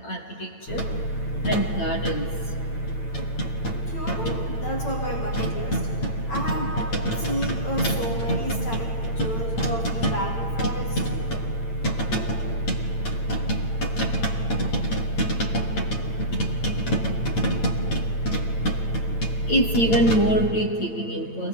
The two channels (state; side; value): late; right; 8.9 ms